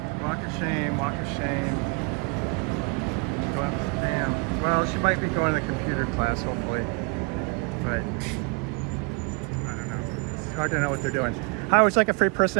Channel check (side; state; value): left; quieter; 31.1 dB